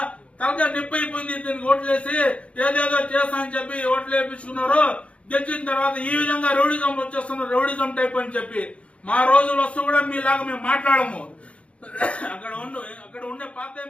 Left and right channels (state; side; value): late; right; 0.062 ms